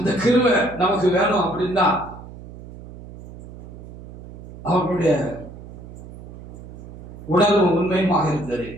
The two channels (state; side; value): noise; right; hum, 15 dB below the sound